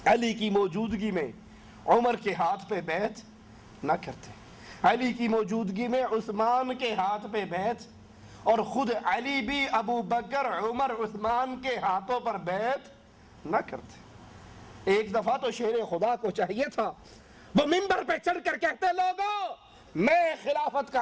علی کی موجودگی میں عمر کے ہاتھ پہ بیعت نہ کرتے، علی کی موجودگی میں عثمان کے ہاتھ پہ بیعت، اور خود علی بھی ابو بکر عمر عثمان کے ہاتھوں پر بیعت نہ کرتے۔ ایک دفعہ تو شیر خدا کو چاہیے تھا وہ منبر پہ چڑھ کر کہتے لوگوں میں خلافت کا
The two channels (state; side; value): identical; both; correlation 1.00